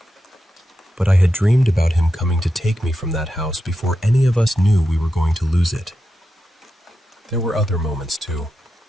But I had dreamed about him coming to take me from that house before any of us knew we were going to lose it. There were other moments too.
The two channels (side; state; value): both; normal; correlation 0.88